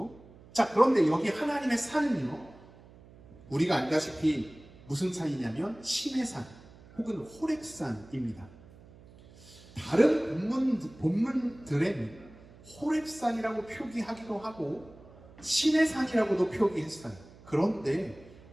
자, 그런데 여기 하나님의 산은요, 우리가 알다시피 무슨 산이냐면 시내산 혹은 호렙산입니다. 다른 본문들에는 호렙산이라고 표기하기도 하고 시내산이라고도 표기했어요. 그런데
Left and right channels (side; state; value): right; noise; hum, 22 dB below the sound